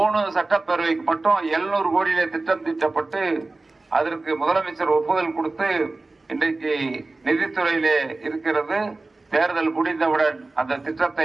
சட்டப்பேரவைக்கு மட்டும் 700 கோடியிலே திட்டம் தீட்டப்பட்டு அதற்கு முதலமைச்சர் ஒப்புதல் கொடுத்து இன்றைக்கு நிதித்துறையிலே இருக்கிறது. தேர்தல் முடிந்தவுடன் அந்த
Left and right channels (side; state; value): left; quieter; 3.3 dB